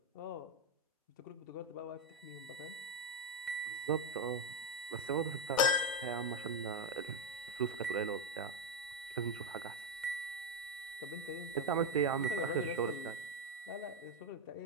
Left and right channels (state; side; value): normal; both; correlation 0.06